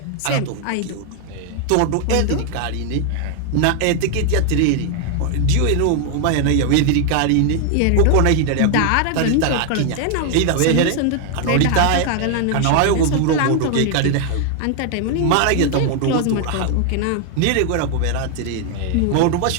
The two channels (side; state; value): both; different; correlation 0.00